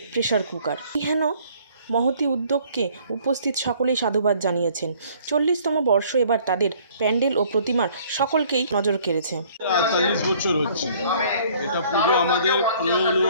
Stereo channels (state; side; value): inverted; both; correlation -0.58